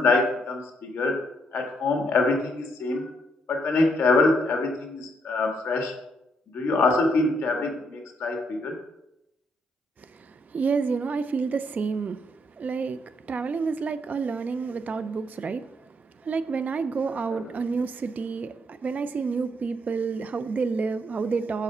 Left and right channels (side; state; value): both; normal; correlation 0.73